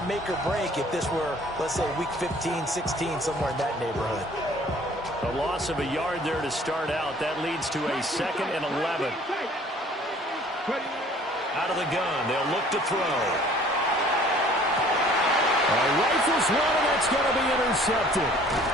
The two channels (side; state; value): both; normal; correlation 0.54